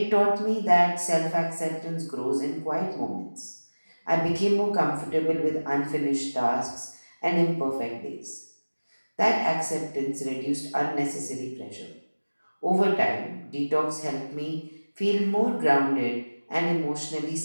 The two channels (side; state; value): both; inverted; correlation -1.00